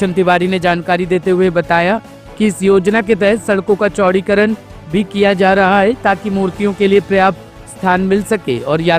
तिवारी ने जानकारी देते हुए बताया कि इस योजना के तहत सड़कों का चौड़ीकरण भी किया जा रहा है, ताकि मूर्तियों के लिए पर्याप्त स्थान मिल सके और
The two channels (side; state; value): both; identical; correlation 1.00